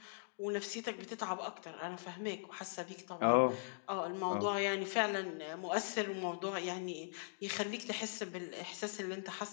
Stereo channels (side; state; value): right; silent; digital silence